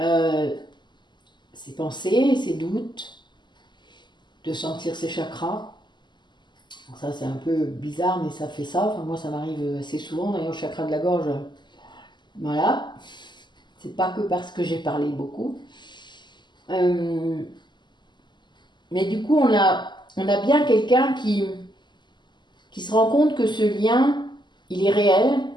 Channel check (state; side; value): late; right; 0.21 ms